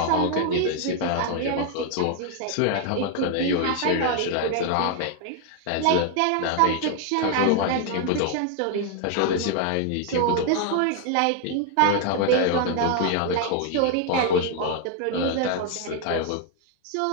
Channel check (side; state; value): both; different; correlation 0.00